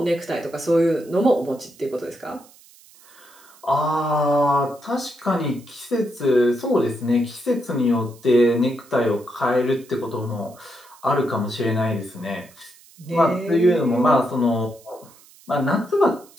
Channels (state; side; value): noise; right; hiss, 25 dB below the sound